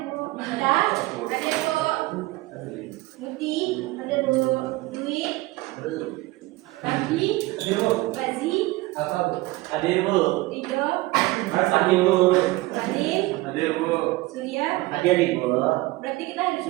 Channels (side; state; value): left; quieter; 20.3 dB